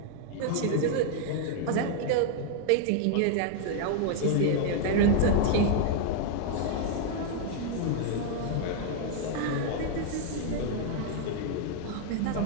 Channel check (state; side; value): different; both; correlation 0.00